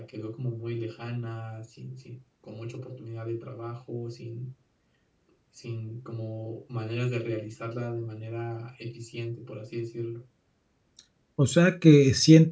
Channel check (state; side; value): identical; both; correlation 1.00